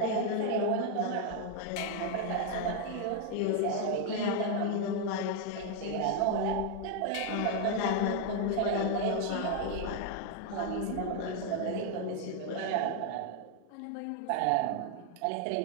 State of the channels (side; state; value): both; different; correlation 0.01